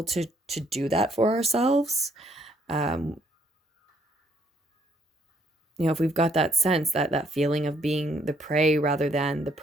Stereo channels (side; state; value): both; normal; correlation 0.66